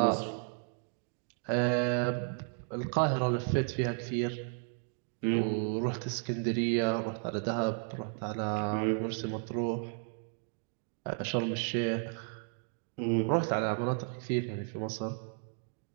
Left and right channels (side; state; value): left; silent; 55 dB below the other